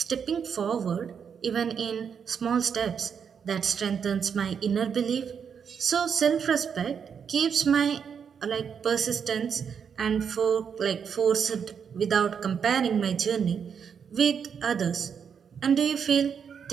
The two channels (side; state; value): left; quieter; 7.0 dB